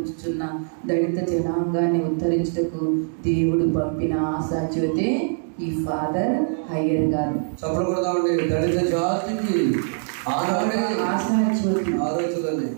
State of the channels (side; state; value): left; silent; digital silence